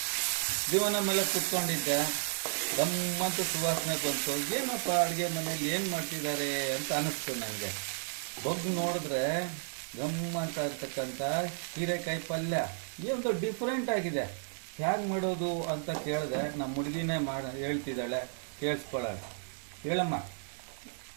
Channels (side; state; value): left; silent; digital silence